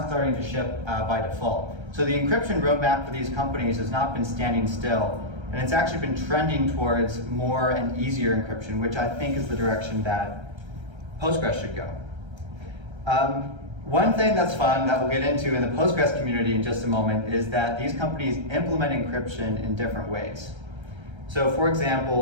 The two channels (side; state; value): left; late; 1.3 ms